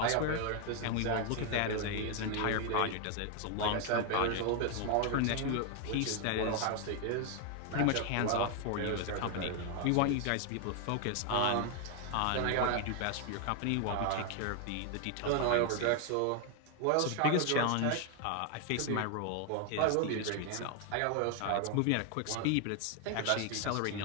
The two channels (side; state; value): both; different; correlation 0.00